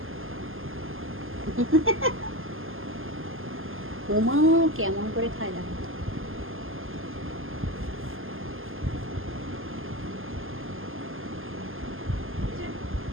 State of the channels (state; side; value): late; left; 0.59 ms